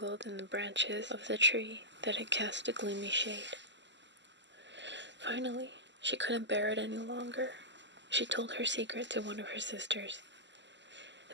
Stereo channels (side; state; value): left; late; 0.53 ms